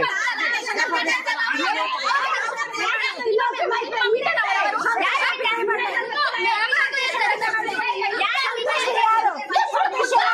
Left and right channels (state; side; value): identical; both; correlation 1.00